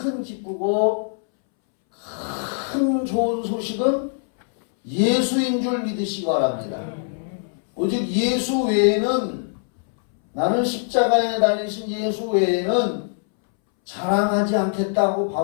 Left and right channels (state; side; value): silent; right; 63 dB below the other